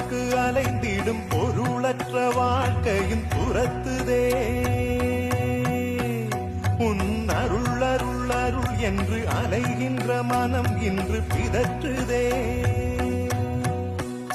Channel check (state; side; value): identical; both; correlation 1.00